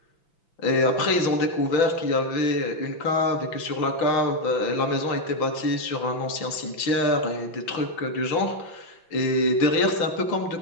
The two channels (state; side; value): late; right; 5.9 ms